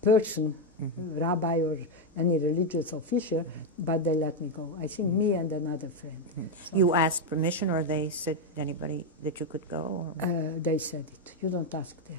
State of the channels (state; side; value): normal; both; correlation 0.04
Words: person, rabbi or any religious official, but they let me go. I think me and another friend. So you asked permission, or they said anybody that you could go? Or? They said it. You don't ask